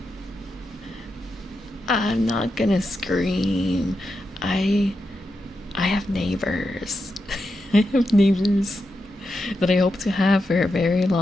I'm not gonna scream. I have neighbors. I have neighbors that I hope to have for a very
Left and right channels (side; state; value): both; normal; correlation 0.87